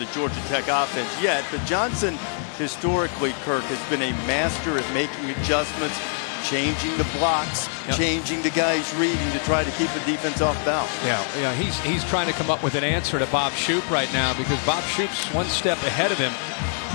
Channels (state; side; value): silent; right; 62 dB below the other